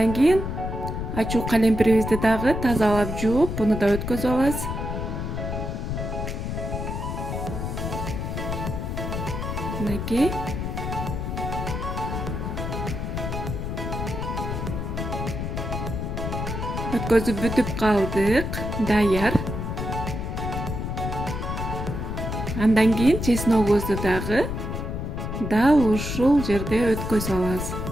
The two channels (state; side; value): noise; left; rumble, 4 dB below the sound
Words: кийин ачуу калемпирибизди дагы тазалап жууп, буну да өткөзүп алабыз. Мынакей. Өткөзүп бүтүп калдык, даяр. Андан кийин чесногубузду дагы дал ушул жерде өткөзүп алабыз.